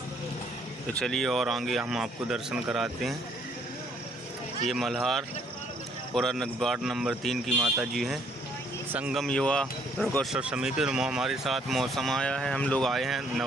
तो चलिए और आगे हम आपको दर्शन कराते हैं। ये मल्हारपुरा वार्ड नंबर 3 की माता जी हैं। संगम युवा दुर्गोत्सव समिति हमारे साथ मौसम आया है, हम लोग आए हैं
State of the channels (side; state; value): both; normal; correlation 0.65